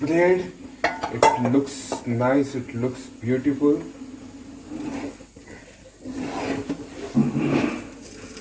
It looks nice. It looks beautiful.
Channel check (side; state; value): both; identical; correlation 1.00